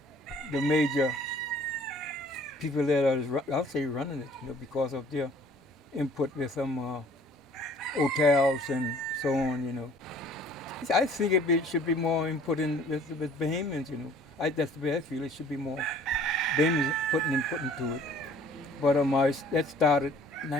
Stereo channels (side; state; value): both; normal; correlation 0.53